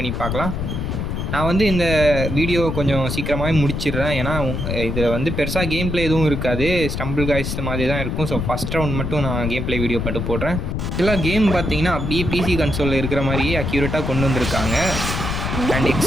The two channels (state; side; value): noise; left; rumble, 2 dB below the sound